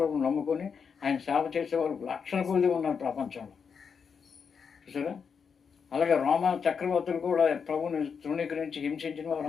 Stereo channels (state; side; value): quieter; right; 6.3 dB